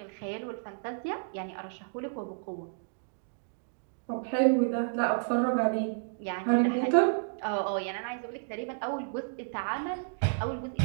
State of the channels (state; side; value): silent; left; digital silence